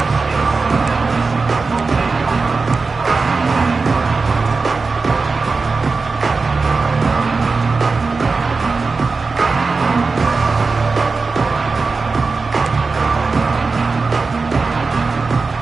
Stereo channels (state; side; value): quieter; left; 4.2 dB